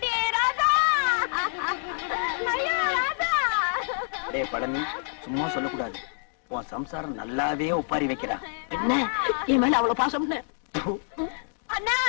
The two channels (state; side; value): silent; right; digital silence